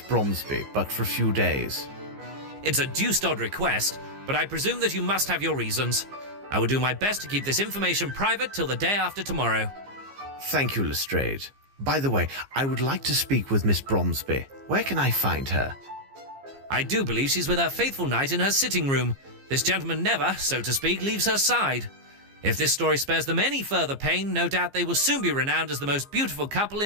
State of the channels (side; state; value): left; late; 15 ms